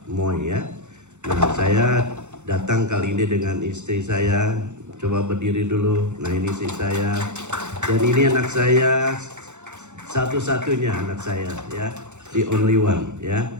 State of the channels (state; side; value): late; left; 0.83 ms